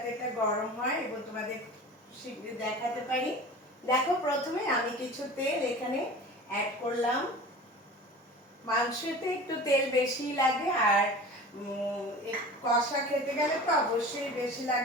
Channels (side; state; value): both; normal; correlation 0.38